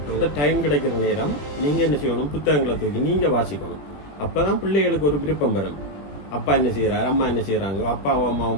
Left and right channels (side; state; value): right; late; 21 ms